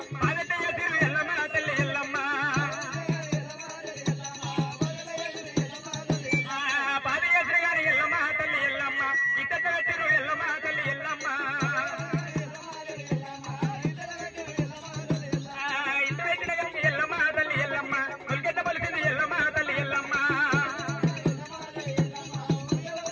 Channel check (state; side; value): identical; both; correlation 1.00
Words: బానెట ఎదురు ఎల్లమ్మ తల్లి ఎల్లమ్మ. బాధ ఎదురు గాని ఎల్లమ్మ తల్లి ఎల్లమ్మ. ఇట్ట ఎదురు ఎల్లమ్మ తల్లి ఎల్లమ్మ. ఇంటి పెట్టిన గాని ఎల్లమ్మ తల్లి ఎల్లమ్మ. కొలికెట్ట పలికింది ఎల్లమ్మ తల్లి ఎల్లమ్మ.